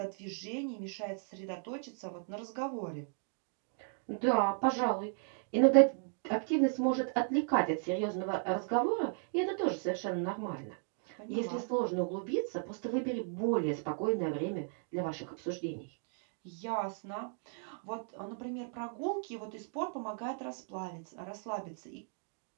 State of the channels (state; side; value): silent; left; 54 dB below the other